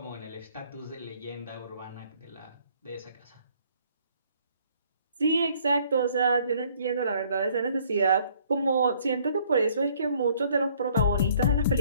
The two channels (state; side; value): inverted; both; correlation -0.62